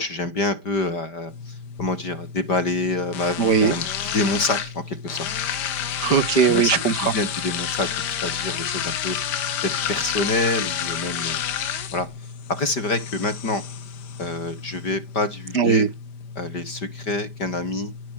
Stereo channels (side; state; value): right; late; 5.1 ms